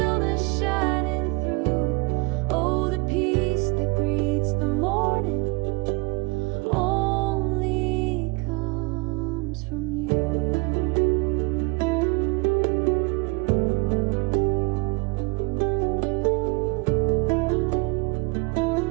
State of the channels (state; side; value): quieter; left; 27.4 dB